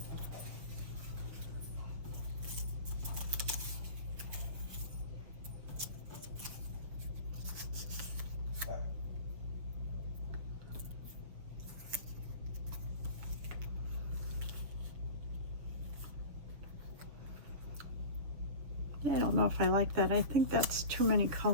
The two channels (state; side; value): late; left; 6.8 ms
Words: I don't know if I like that. I think that's too many